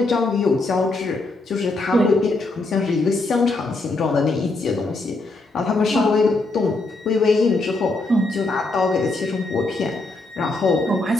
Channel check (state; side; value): quieter; right; 3.2 dB